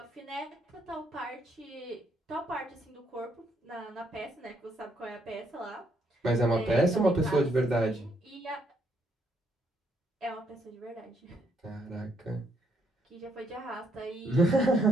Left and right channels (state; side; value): normal; both; correlation 0.73